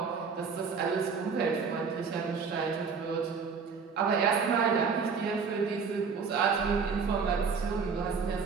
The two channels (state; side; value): quieter; left; 5.5 dB